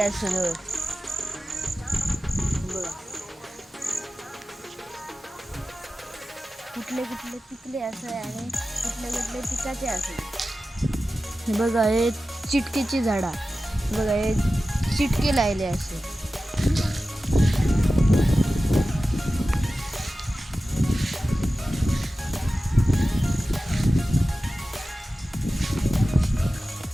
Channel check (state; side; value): normal; both; correlation 0.94